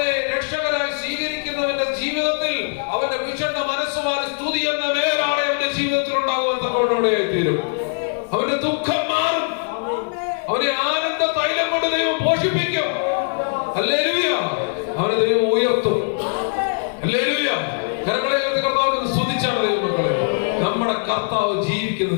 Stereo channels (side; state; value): right; silent; digital silence